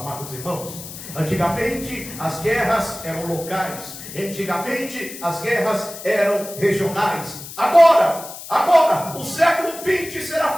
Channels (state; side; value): noise; left; hiss, 13 dB below the sound